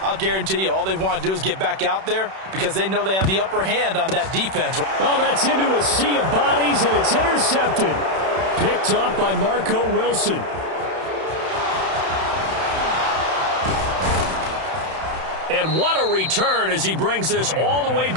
I'll guarantee you all they want to do is get back out there because they know they have the upper hand on that defense. Oh, that's into a sea of bodies, and it's intercepted. Picked off by Marco Wilson. And what a return as he brings this all the way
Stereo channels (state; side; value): late; left; 31 ms